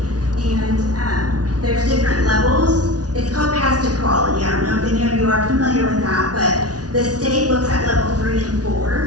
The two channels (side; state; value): left; late; 0.68 ms